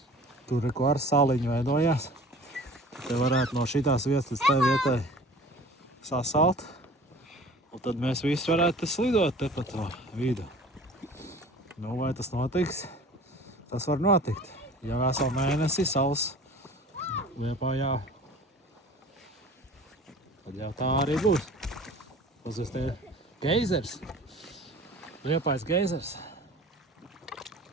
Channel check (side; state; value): both; normal; correlation 0.44